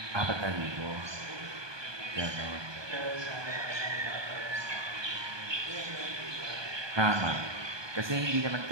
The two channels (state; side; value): late; left; 1.2 ms